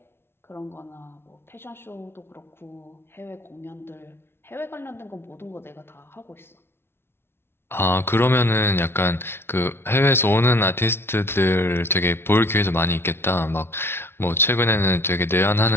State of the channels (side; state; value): right; late; 0.12 ms